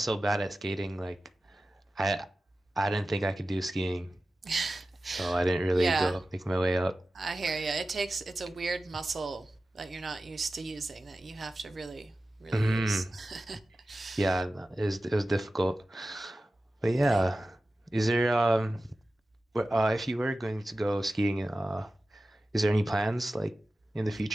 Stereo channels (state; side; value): normal; both; correlation 0.95